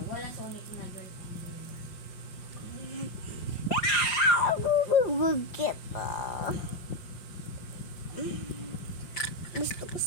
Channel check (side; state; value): right; late; 5.7 ms